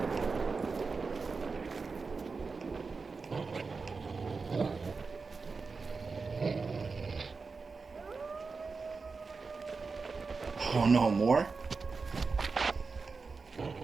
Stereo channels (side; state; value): left; quieter; 4.5 dB